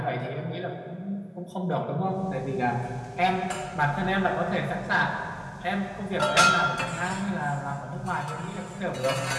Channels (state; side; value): identical; both; correlation 1.00